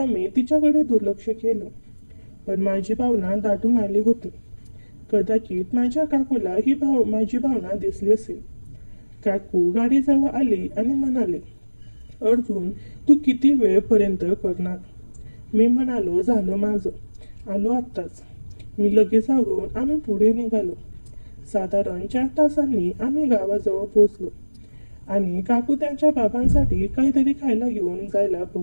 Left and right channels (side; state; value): both; inverted; correlation -1.00